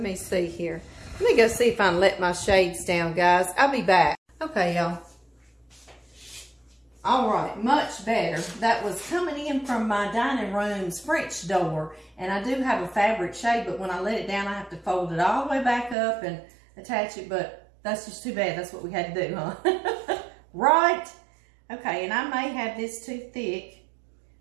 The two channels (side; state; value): left; drops out; at 16.0 s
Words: me see here. Let me go see if I can let my shades down, guys. I'll be back. Okay, y'all. All right, much better. That was coming in from my dining room's French door. And I do have a fabric shade, but when I let it down, I have to fold it all the way back up and attach it. But that's just too bad. That's what we had to do, huh? Right? Okay, and I may have this too thick,